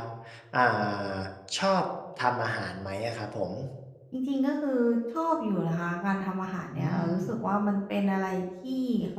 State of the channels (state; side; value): identical; both; correlation 1.00